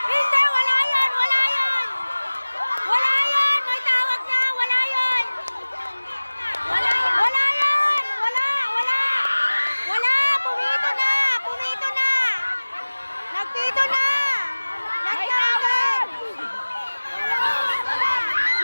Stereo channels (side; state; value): both; inverted; correlation -1.00